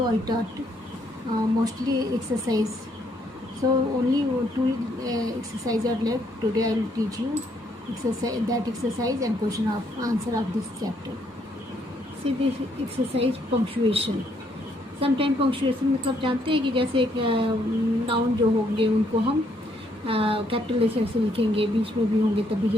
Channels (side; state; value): both; normal; correlation 0.71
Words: I taught mostly exercise. So only two exercises are left. Today I will teach you exercise and question of answer of this chapter. See this exercise punctuation. Sometime punctuation मतलब जानते हैं कि जैसे एक noun जो होंगे उनको हम कैपिटल लेटर से लिखेंगे, बीच में भी होंगे तभी,